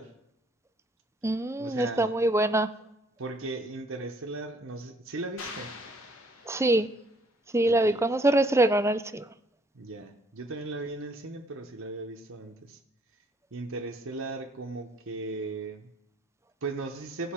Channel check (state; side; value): normal; both; correlation 0.64